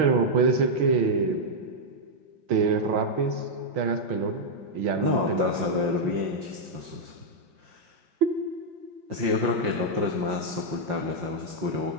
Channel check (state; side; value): late; left; 5.7 ms